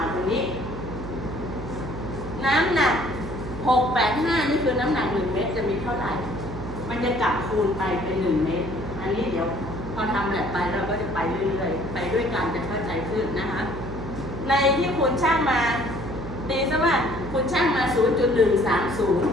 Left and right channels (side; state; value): right; noise; hum, 9 dB below the sound